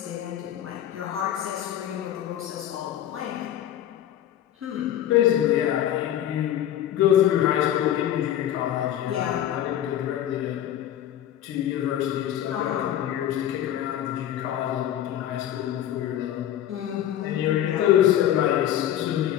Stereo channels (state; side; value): quieter; right; 11.5 dB